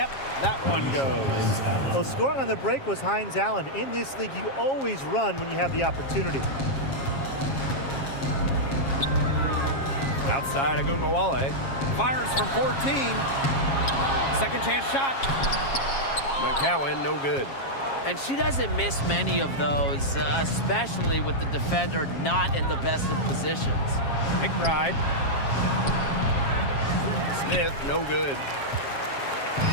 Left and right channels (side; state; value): right; late; 7.4 ms